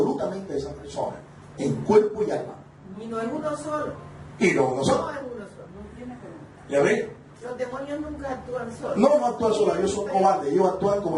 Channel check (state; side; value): identical; both; correlation 1.00